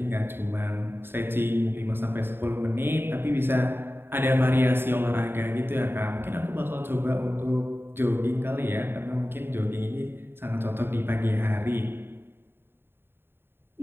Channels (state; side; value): late; left; 0.11 ms